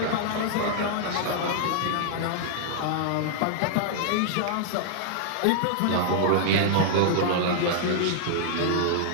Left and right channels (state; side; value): different; both; correlation -0.01